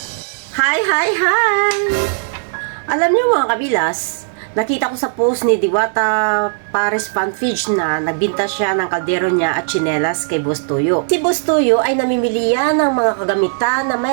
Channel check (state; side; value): silent; left; digital silence